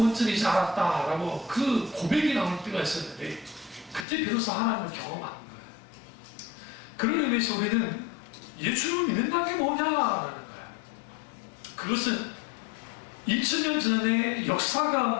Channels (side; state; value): right; drops out; at 4.0 s